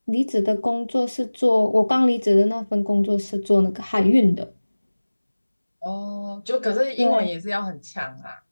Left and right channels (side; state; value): both; inverted; correlation -1.00